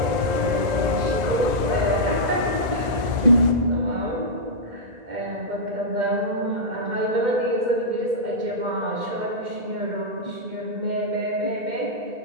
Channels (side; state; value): left; late; 2.0 ms